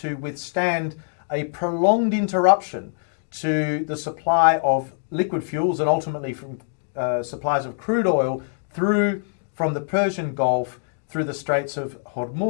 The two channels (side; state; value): right; silent; digital silence